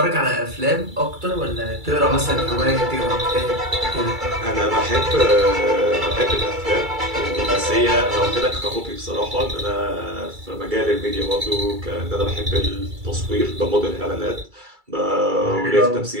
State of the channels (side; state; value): left; late; 2.3 ms